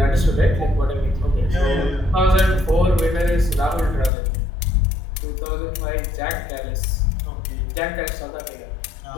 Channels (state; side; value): drops out; right; at 4.1 s